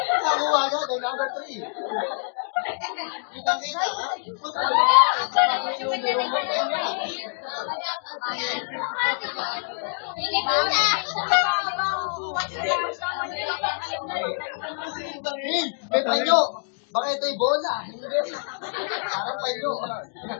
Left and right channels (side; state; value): right; silent; digital silence